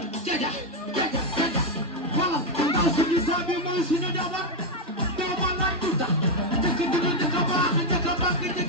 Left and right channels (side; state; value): both; normal; correlation 0.03